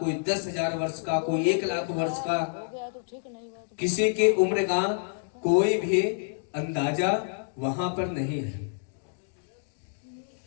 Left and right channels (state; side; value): silent; right; digital silence